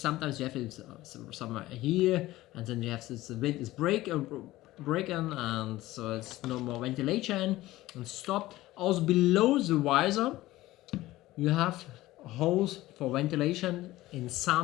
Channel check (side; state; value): right; quieter; 17.0 dB